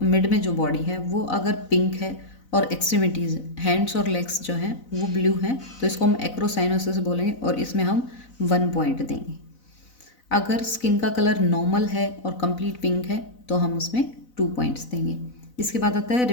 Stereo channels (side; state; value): right; late; 4.0 ms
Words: मिड में जो बॉडी है, वो अगर पिंक है और एक्सट्रीमिटीज़, हैंड्स और लेग्स जो हैं वो ब्लू हैं, तो इसको हम एक्रोसाइनोसिस बोलेंगे, और इसमें हम 1 पॉइंट देंगे। अगर स्किन का कलर नॉर्मल है और कंप्लीट पिंक है तो हम उसमें 2 पॉइंट्स देंगे। इसके बाद आता है